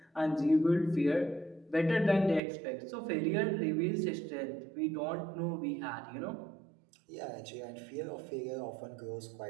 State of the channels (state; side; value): drops out; left; at 2.4 s